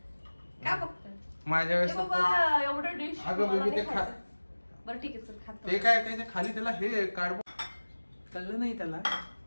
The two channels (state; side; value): inverted; both; correlation -1.00